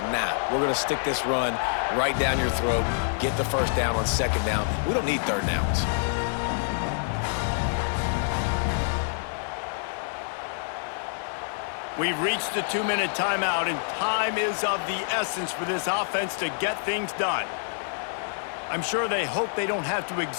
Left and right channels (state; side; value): silent; right; 60 dB below the other